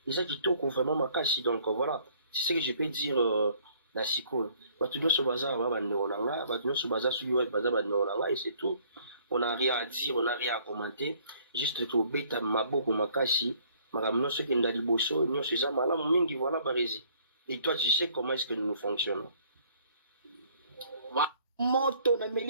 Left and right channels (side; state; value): both; inverted; correlation -0.60